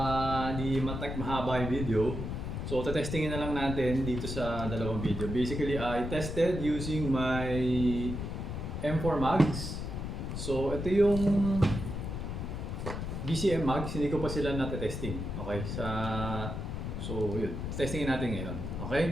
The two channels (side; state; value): left; noise; rumble, 4 dB below the sound